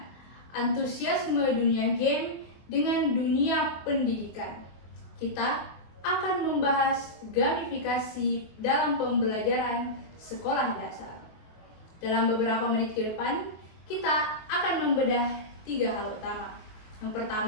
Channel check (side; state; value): right; late; 24 ms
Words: antusiasme dunia game dengan dunia pendidikan. Kita akan membahas gamifikasi dalam pembelajaran sekolah dasar. Dalam beberapa menit ke depan, kita akan membedah 3 hal utama. Yang